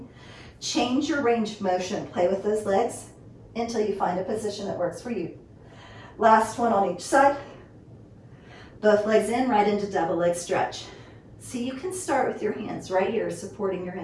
change your range of motion. Play with those legs until you find a position that works for you. Last one on each side. Both legs in, right into double leg stretch. So you can start with your hands right here supporting your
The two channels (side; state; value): both; identical; correlation 1.00